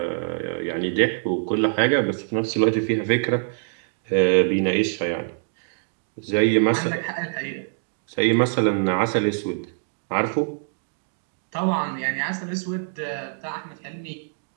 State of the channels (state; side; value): silent; left; digital silence